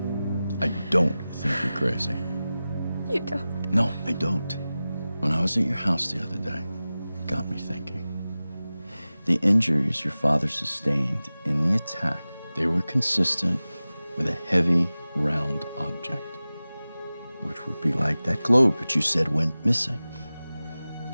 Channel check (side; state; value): both; inverted; correlation -0.96